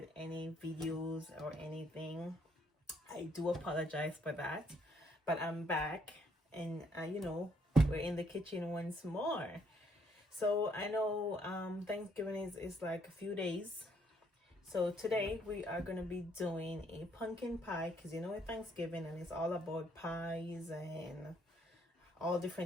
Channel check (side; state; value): both; normal; correlation 0.69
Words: any videos or anything. I do apologize for that, but I'm back and we're in the kitchen once more. So I know Thanksgiving is like a few days. So today we are going to be doing a pumpkin pie because it's Thanksgiving and it's all about pies and all